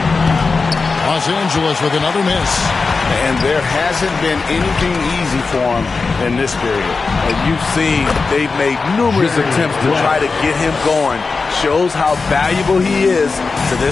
Los Angeles with another miss. And there hasn't been anything easy for him in this period. And you've seen they've made numerous attempts to try to get him going. Shows how valuable he is to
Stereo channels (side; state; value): right; quieter; 4.3 dB